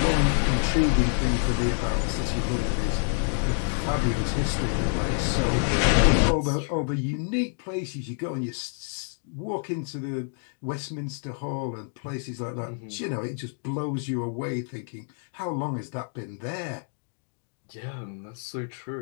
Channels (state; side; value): silent; right; 56 dB below the other